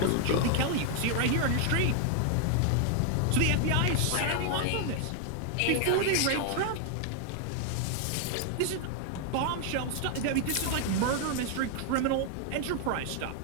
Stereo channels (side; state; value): both; different; correlation 0.00